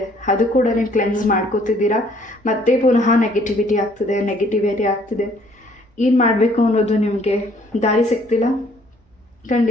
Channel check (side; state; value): both; normal; correlation 0.61